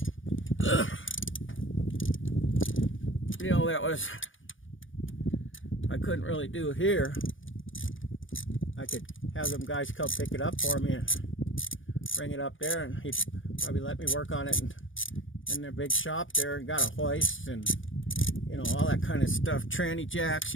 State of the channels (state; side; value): late; right; 0.57 ms